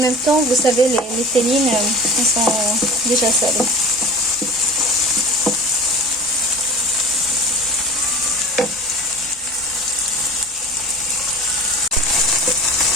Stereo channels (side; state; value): both; normal; correlation 0.36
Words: temps, vous savez, les télines, elles sont déjà salées.